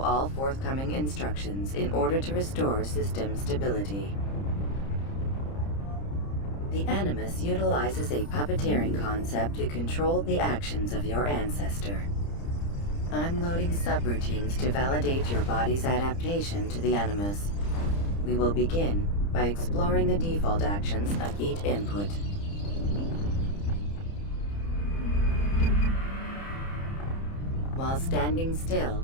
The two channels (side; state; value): right; late; 30 ms